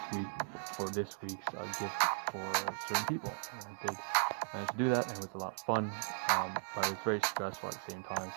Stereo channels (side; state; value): left; silent; digital silence